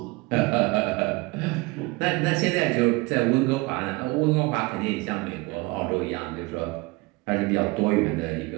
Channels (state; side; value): quieter; left; 24.1 dB